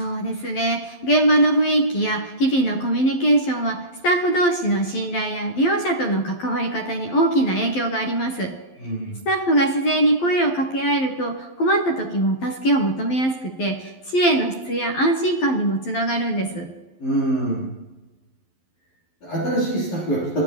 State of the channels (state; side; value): late; right; 11 ms